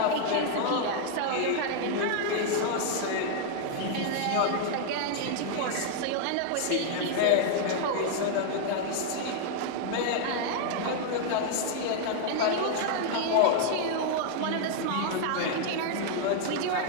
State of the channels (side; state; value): both; different; correlation 0.00